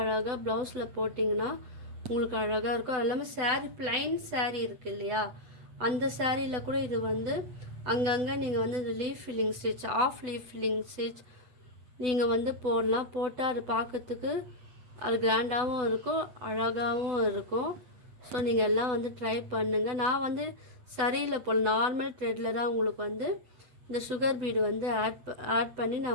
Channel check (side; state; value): left; late; 8.0 ms